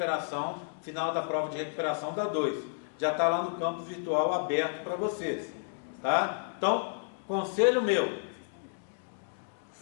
final da prova de recuperação da 2. Já está lá no campo virtual aberto para vocês. Tá? Então, conselho meu,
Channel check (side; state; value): right; silent; digital silence